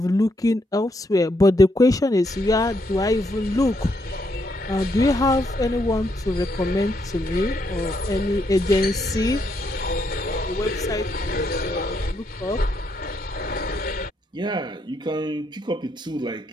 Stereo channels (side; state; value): both; normal; correlation 0.77